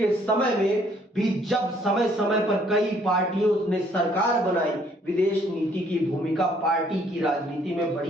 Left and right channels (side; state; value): both; normal; correlation 0.64